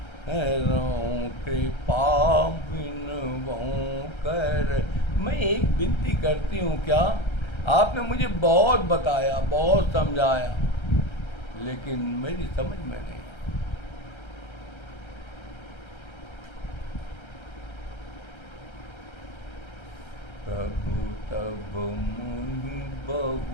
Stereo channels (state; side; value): late; right; 1.3 ms